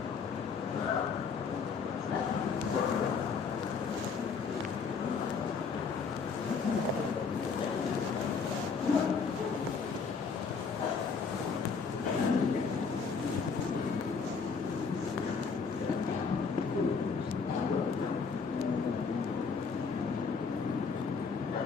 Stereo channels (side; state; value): right; quieter; 5.3 dB